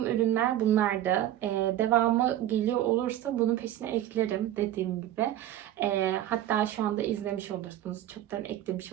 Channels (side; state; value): left; quieter; 12.7 dB